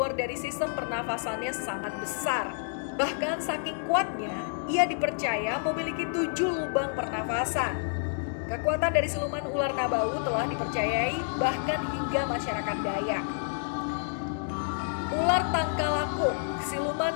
dari sistem pernafasannya sangat besar. Bahkan saking kuatnya, ia dipercaya memiliki 7 lubang pernafasan. Kekuatan dari siluman ular Nabau telah dipercayai bahkan hingga masyarakat Dayak. Ular Tangkalakuk, siluman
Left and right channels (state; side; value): silent; right; digital silence